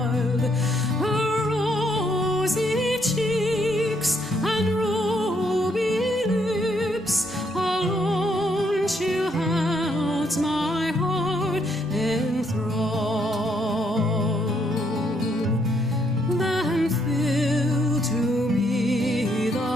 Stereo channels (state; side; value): normal; both; correlation 0.73